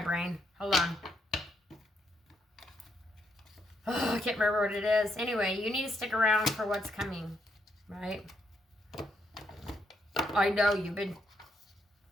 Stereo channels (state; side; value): normal; both; correlation 0.76